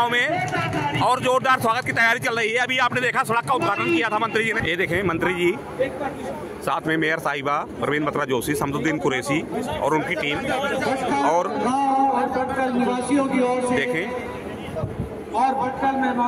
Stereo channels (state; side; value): identical; both; correlation 1.00